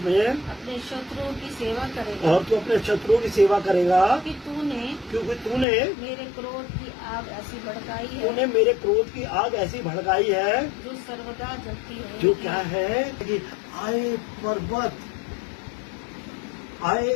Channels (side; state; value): right; drops out; at 5.7 s